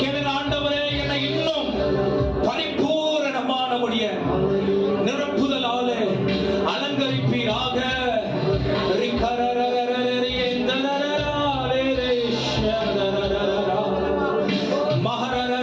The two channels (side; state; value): both; identical; correlation 1.00